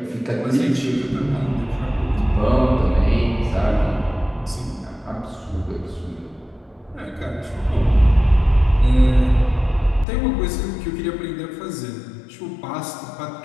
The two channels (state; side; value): drops out; right; at 10.1 s